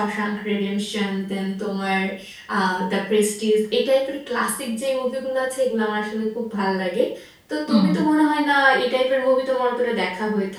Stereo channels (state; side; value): identical; both; correlation 1.00